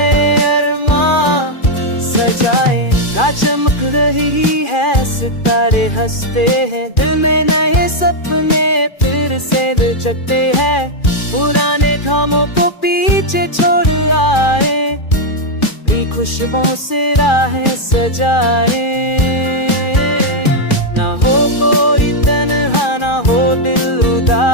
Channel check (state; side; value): late; right; 2.4 ms